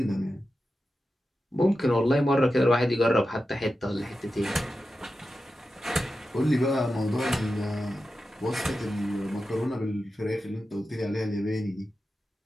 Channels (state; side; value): normal; both; correlation 0.92